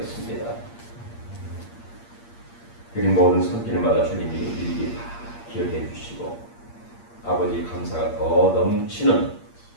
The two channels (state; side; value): late; right; 8.6 ms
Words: 그린 모든 손길마다 주님이 일일이 다 기억해 주시고 아버지 감사가 더 넘치는